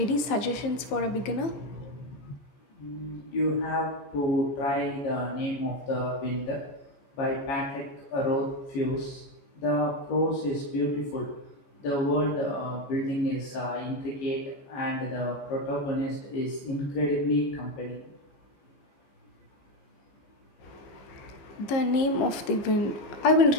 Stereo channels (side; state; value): right; late; 15 ms